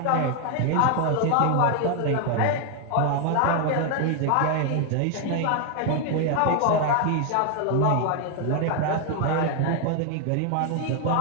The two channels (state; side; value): different; both; correlation 0.00